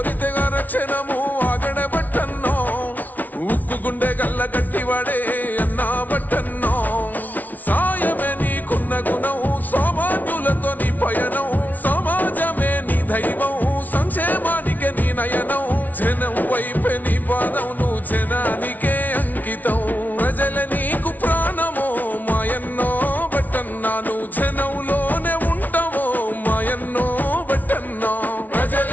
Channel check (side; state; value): right; late; 0.079 ms